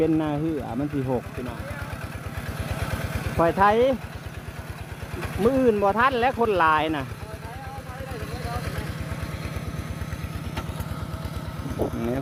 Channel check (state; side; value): identical; both; correlation 1.00